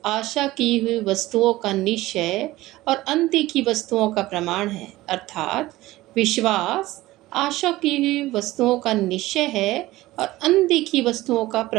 आशा की हुई वस्तुओं का निश्चय और अनदेखी वस्तुओं का प्रमाण है। अर्थात विश्वास आशा की हुई वस्तुओं का निश्चय है और अनदेखी वस्तुओं का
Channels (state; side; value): quieter; left; 17.6 dB